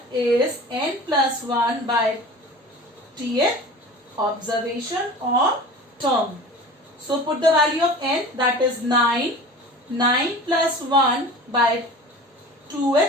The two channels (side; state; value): both; normal; correlation 0.38